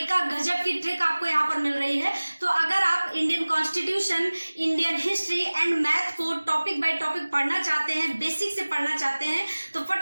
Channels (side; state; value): both; inverted; correlation -1.00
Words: गजब की ट्रिक आपको यहाँ पर मिल रही है। तो अगर आप Indian constitution, Indian history and math को टॉपिक बाय टॉपिक पढ़ना चाहते हैं, बेसिक से पढ़ना चाहते हैं, तो